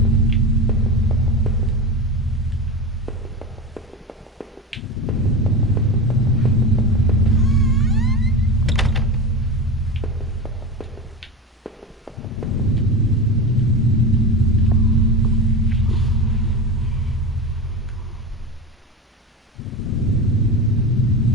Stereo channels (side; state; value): both; normal; correlation 0.25